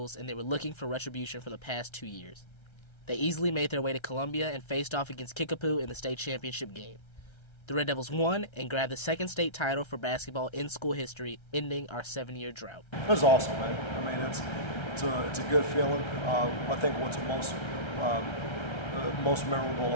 and they were looking for retribution for the past 2 years. They easily made their way to Columbia and faced off against Kickapoo in the state championship game. The Red Devils won and grabbed the 2nd state title for basketball in school history, ending our 7-year drought. It was awesome, man. It's a good feeling. I think what's most memorable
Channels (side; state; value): right; late; 1.3 ms